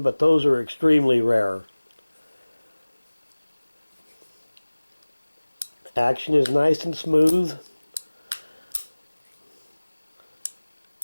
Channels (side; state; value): both; inverted; correlation -1.00